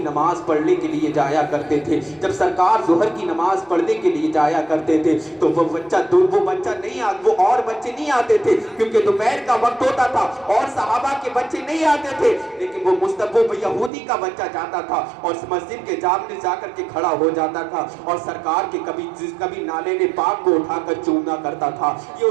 نماز پڑھنے کے لیے جایا کرتے تھے، جب سرکار ظہر کی نماز پڑھنے کے لیے جایا کرتے تھے تو وہ بچہ نہیں آتا، وہ اور بچے نہیں آتے تھے، کیونکہ دوپہر کا وقت ہوتا تھا اور صحابہ کے بچے نہیں آتے تھے، لیکن وہ یہودی کا بچہ جاتا تھا اور مسجد کے جامنے جا کر کے کھڑا ہو جاتا تھا، اور سرکار کے کبھی نالے نے پاک کو اٹھا کر چومنا کرتا تھا۔ یہ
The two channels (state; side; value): drops out; left; at 13.9 s